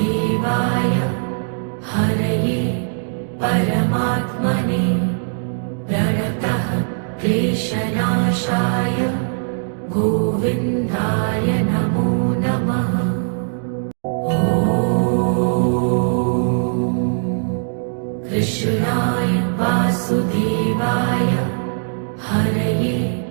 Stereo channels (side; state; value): left; silent; digital silence